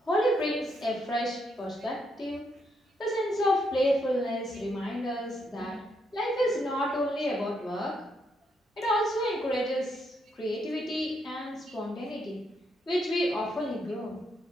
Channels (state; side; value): normal; both; correlation 0.77